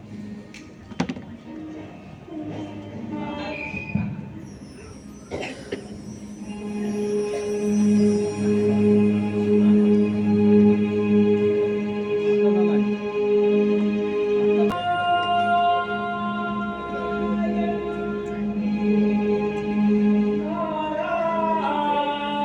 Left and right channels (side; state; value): both; identical; correlation 1.00